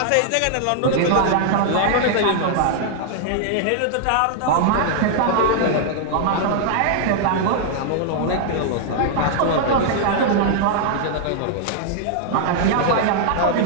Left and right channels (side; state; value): both; different; correlation -0.01